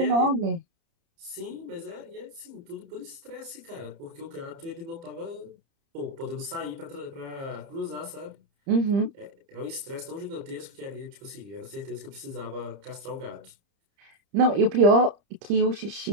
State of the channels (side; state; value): left; late; 30 ms